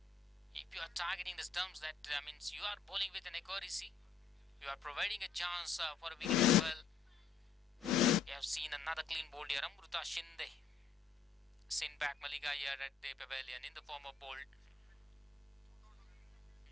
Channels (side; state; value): right; quieter; 5.6 dB